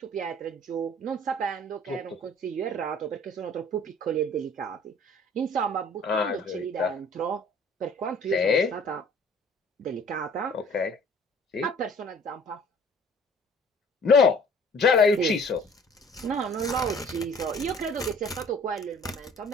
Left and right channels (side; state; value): both; normal; correlation 0.52